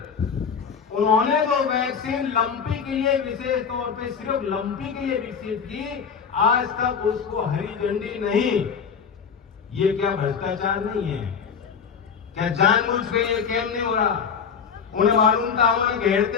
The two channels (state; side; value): quieter; right; 6.6 dB